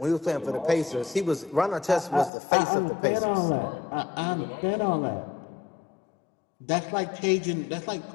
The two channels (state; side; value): drops out; right; at 2.3 s